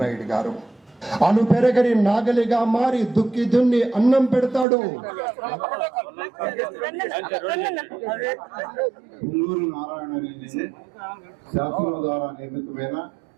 గారు అను పెరగని నాగలిగా మారి దుక్కి దున్ని అన్నం పెడతాడు. పుల్లూరు నారాయణ రెడ్డి శాసనం ద్వారా నిర్మితమైన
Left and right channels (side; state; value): left; drops out; at 4.7 s